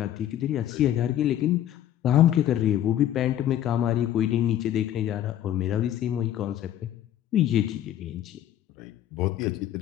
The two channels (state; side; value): quieter; right; 11.6 dB